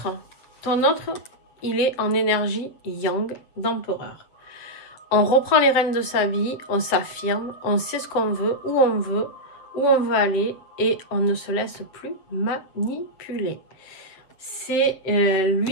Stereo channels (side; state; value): right; late; 7.8 ms